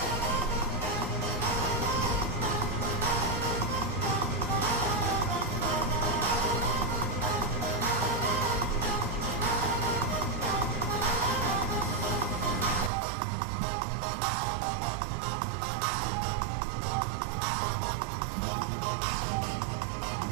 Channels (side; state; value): left; drops out; at 12.9 s